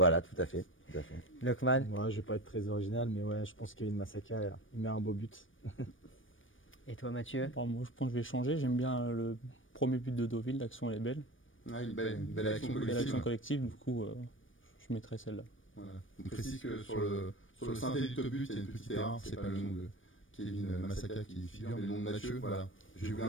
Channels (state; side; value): late; right; 0.57 ms